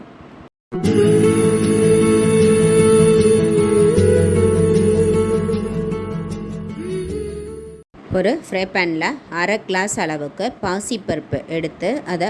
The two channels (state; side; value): identical; both; correlation 1.00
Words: ஒரு ஃப்ரை பேனில் அரை கிளாஸ் அளவுக்கு பாசிப்பருப்பு எடுத்து அதை